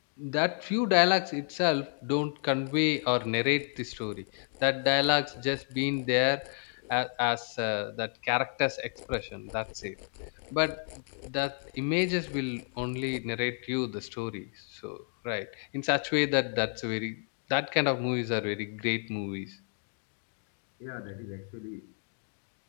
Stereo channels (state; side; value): silent; right; 57 dB below the other